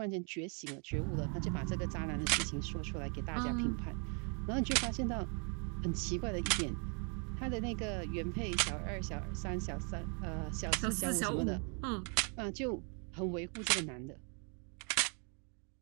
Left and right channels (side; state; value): left; quieter; 38.0 dB